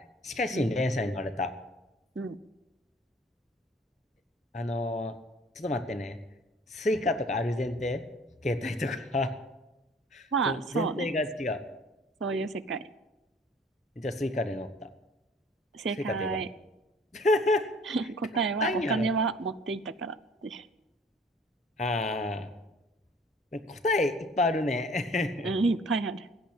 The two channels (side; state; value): both; normal; correlation 0.53